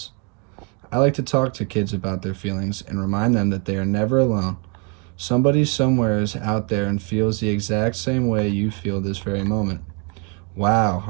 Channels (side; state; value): left; quieter; 34.8 dB